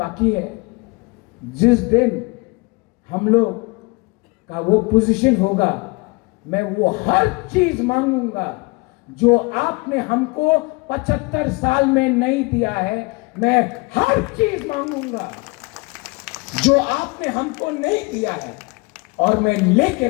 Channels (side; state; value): right; quieter; 27.0 dB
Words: है। जिस दिन हम लोग का वो पोजीशन होगा, मैं वो हर चीज मांगूंगा जो आपने हमको 75 साल में नहीं दिया है। मैं हर चीज मांगूंगा जो आपने हमको नहीं दिया है, और मैं लेके